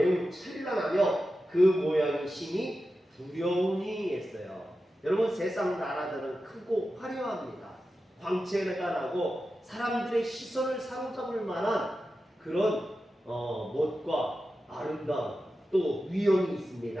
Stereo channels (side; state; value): both; normal; correlation 0.92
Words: 찬란하며 그 모양이 심히 두려우니 했어요. 여러분, 세상 나라들은 크고 화려합니다. 광채가 나고 사람들의 시선을 사로잡을 만한 그런 멋과 아름다움, 또 위엄이